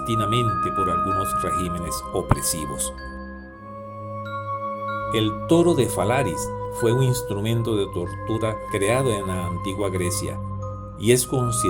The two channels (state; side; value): identical; both; correlation 1.00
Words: por algunos regímenes opresivos. El toro de Falaris fue un instrumento de tortura creado en la antigua Grecia y es